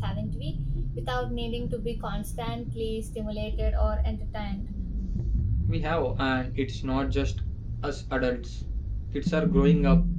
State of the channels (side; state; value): both; identical; correlation 1.00